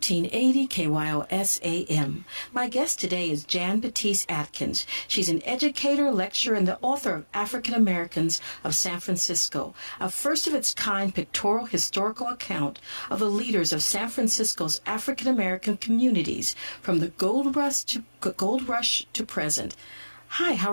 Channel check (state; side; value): inverted; both; correlation -1.00